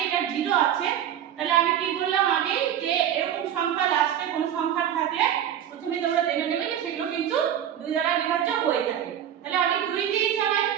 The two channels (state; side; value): quieter; left; 10.2 dB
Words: এটা 0 আছে, তাহলে আমি কি বললাম আগে যে এরকম সংখ্যা লাস্টে কোন সংখ্যা থাকলে প্রথমে তোমরা জেনে নেবে যে সেগুলো কিন্তু 2 দ্বারা বিভাজ্য হয়ে থাকে। তাহলে আমি 2 দিয়ে চালাই,